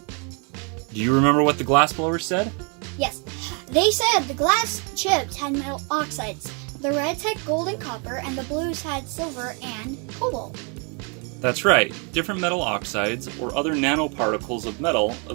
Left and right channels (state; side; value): quieter; left; 35.3 dB